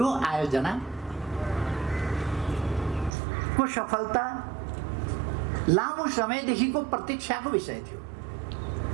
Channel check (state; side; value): drops out; left; at 3.1 s